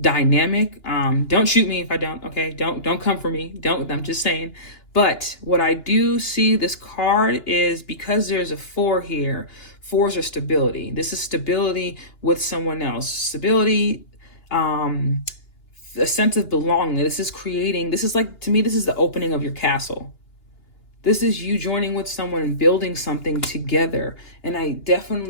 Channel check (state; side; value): late; right; 2.9 ms